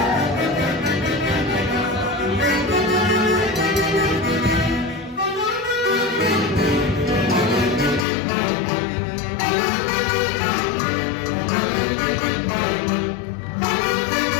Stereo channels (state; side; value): drops out; right; at 8.1 s